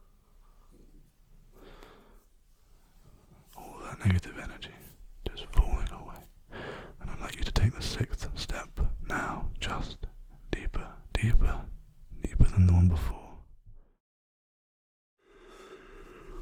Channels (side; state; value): both; identical; correlation 1.00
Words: All that negative energy just falling away. And I'd like you to take the 6th step now, just deeper, deeper, deeper than the one before.